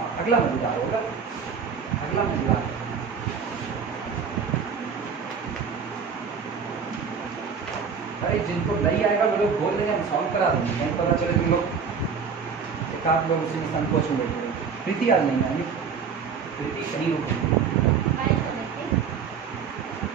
अगला मजेदार होगा, अगला मजेदार। अरे जिनको नहीं आएगा वो लोग बोल देंगे, हम सॉल्व करा देंगे। नहीं पता चले तुम लोग एक आध लोग उसी में संकोच में बैठे। प्रीति आज नहीं आएगी, प्रीति कहीं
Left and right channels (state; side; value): quieter; left; 6.2 dB